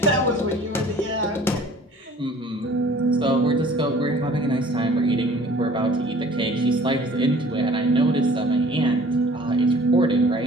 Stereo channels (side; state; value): both; normal; correlation 0.50